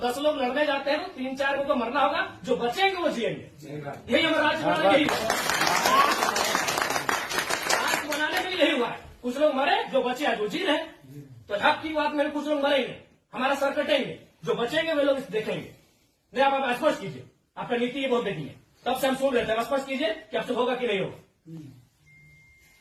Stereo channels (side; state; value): both; identical; correlation 1.00